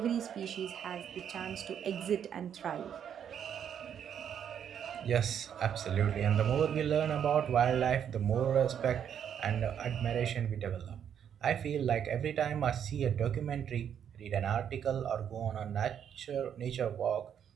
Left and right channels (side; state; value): left; quieter; 8.7 dB